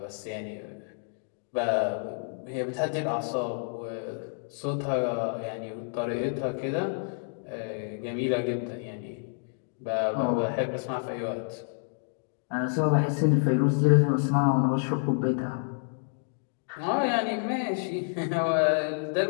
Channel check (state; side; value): silent; right; 59 dB below the other